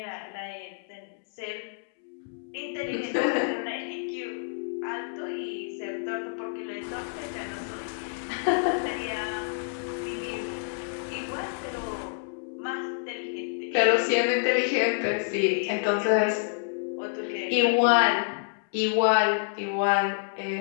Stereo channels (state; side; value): silent; right; 59 dB below the other